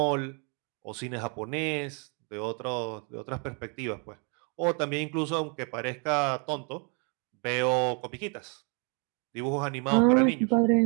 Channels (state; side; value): quieter; left; 36.4 dB